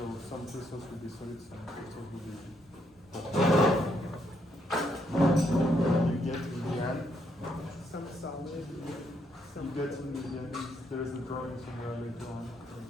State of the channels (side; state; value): both; normal; correlation 0.75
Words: some crystals will be solid, some crystals will be you get in the end. Some solid, You some. get in the end. There is a drawing somewhere later on.